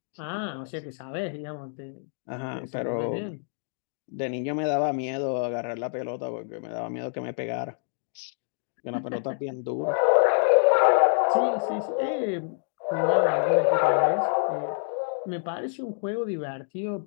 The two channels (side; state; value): right; silent; digital silence